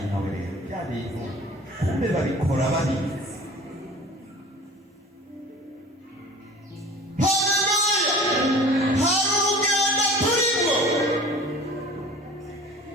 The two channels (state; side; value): normal; both; correlation 0.43